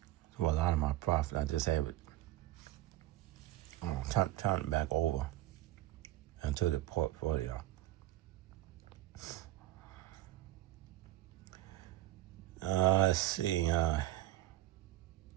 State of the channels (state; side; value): quieter; left; 15.3 dB